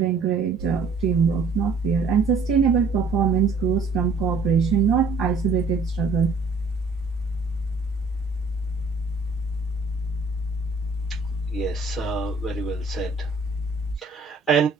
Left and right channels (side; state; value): left; quieter; 4.0 dB